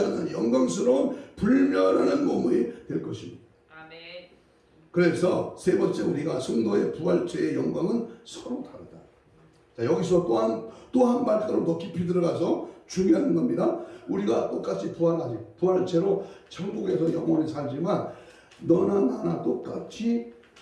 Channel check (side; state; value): both; identical; correlation 1.00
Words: 않는 영광스러운 불멸하는 몸이 될 것입니다. 아멘. 그래서 세 번째 우리가 성도의 부활체의 영광은 서로 다르다. 자, 여기서 또 한 발걸음 더 깊이 들어가서 중요한 겁니다. 우리가 똑같이 부활하지. 부활체로 천국에서 영원히 살지만 너나 나나 똑같이